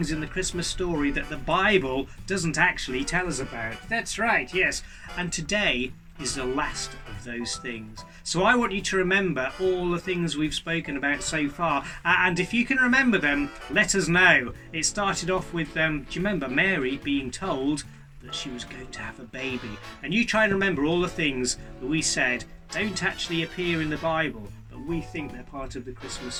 in the Christmas story that the Bible doesn't actually tell us about. That's right, yes. And today is the last of those things. So I want you to remember all the things we've spoken about so far. And if you can remember them, let us know. It started off with, do you remember Mary being told that she was going to have a baby? And you try and remember all the things that we said don't actually appear in the Bible, but we think they're part of the Christmas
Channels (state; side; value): identical; both; correlation 1.00